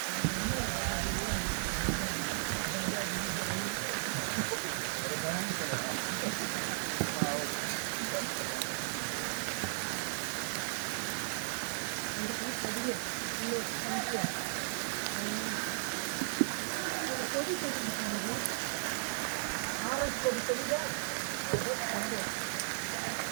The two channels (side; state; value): left; silent; digital silence